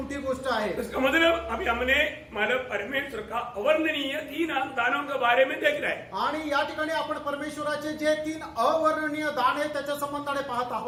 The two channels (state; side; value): identical; both; correlation 1.00